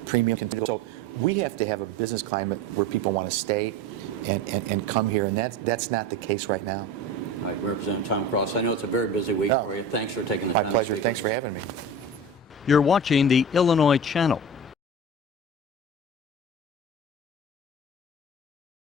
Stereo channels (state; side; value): normal; both; correlation 0.32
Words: premium continues. So we have to have a business climate where people want to stay and come here, and that's not the case right now. All right, Representative Tom Cross, I know it's a very busy week for you. Thanks for taking the time. My pleasure. Thanks for having me. You're watching the Illinois Channel.